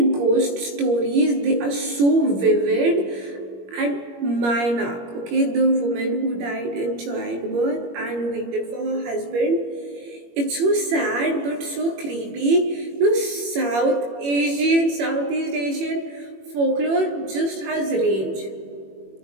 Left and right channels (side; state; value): left; late; 21 ms